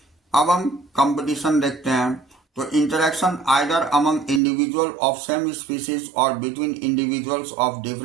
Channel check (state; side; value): drops out; left; at 4.4 s